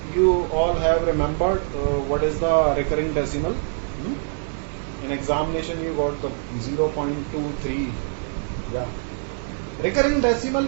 you all have remembered what is the recurring decimal. In examination you got the 0.23. Yeah. Recurring decimal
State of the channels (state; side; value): silent; left; digital silence